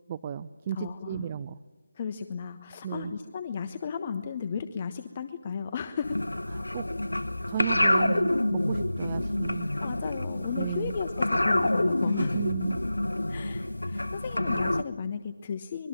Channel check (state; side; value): inverted; both; correlation -0.91